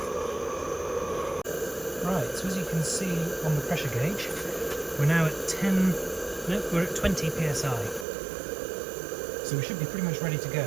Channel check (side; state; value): left; drops out; at 8.1 s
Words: Right, so as you can see on the pressure gauge, we're now at 20 psi. So we should be pretty much ready to go.